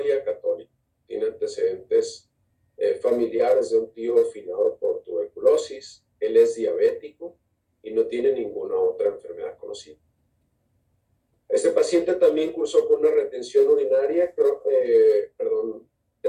católico. Tiene antecedentes familiares de un tío finado por tuberculosis. Él es diabético y no tiene ninguna otra enfermedad conocida. Este paciente también cursó con una retención urinaria,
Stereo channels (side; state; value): both; identical; correlation 1.00